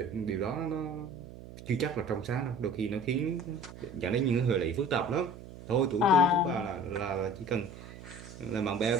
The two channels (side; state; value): right; noise; hum, 15 dB below the sound